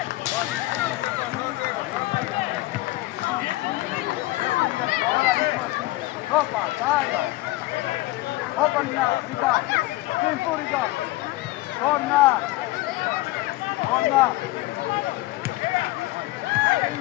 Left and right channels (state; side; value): quieter; right; 18.8 dB